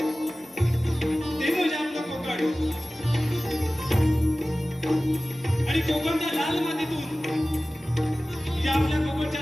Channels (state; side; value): normal; both; correlation 0.97